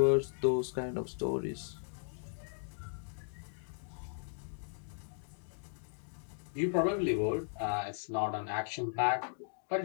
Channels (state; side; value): silent; right; digital silence